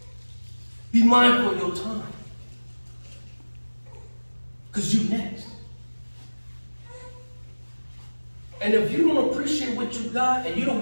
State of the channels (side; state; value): both; inverted; correlation -1.00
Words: be mindful of your time. Because you next. And if you don't appreciate what you got and you